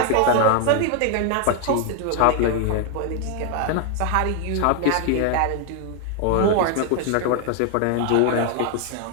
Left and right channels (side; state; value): both; different; correlation 0.00